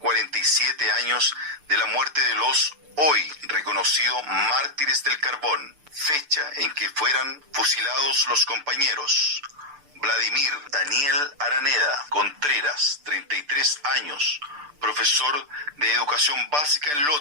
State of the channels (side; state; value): left; late; 6.8 ms